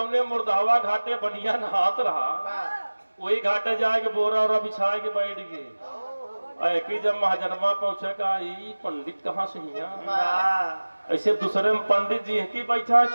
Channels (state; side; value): inverted; both; correlation -1.00